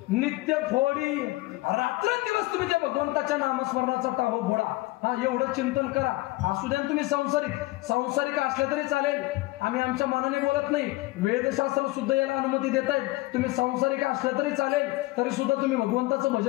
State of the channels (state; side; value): quieter; right; 20.3 dB